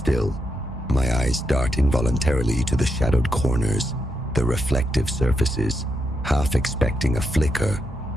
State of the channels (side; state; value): both; normal; correlation 0.83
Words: my eyes dart involuntarily to the shadowed corners, the reflective surfaces, half expecting a flicker,